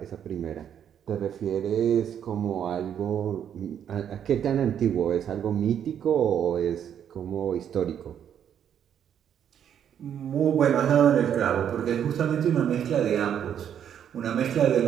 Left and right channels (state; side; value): quieter; left; 9.1 dB